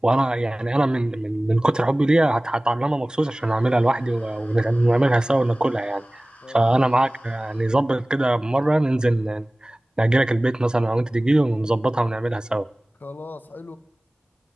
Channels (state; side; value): normal; both; correlation 0.98